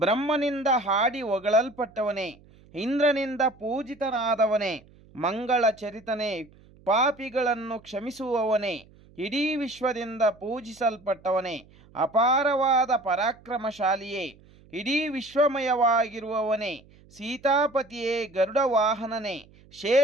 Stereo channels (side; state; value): right; noise; hum, 26 dB below the sound